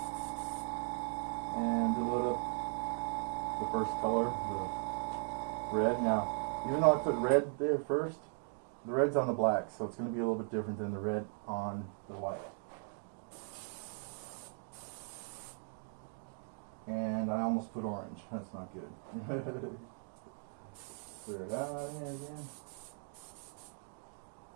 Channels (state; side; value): silent; left; 52 dB below the other